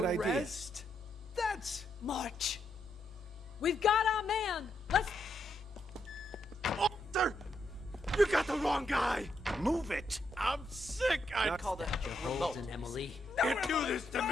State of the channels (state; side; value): normal; both; correlation 0.79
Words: idea. Arrest? That's... March! We've got our man! Let's... Arthur! You got the wrong guy! Move it! I'm sick! I Call that your Holden, Emily. can't do this to